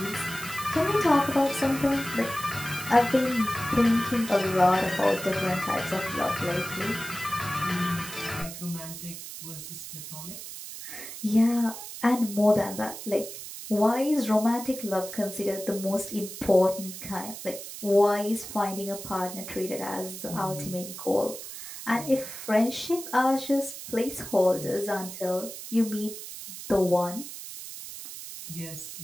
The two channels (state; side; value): noise; right; hiss, 11 dB below the sound